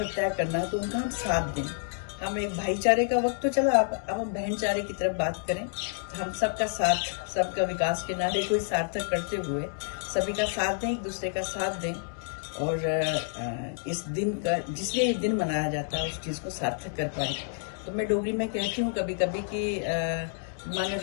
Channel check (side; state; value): right; silent; digital silence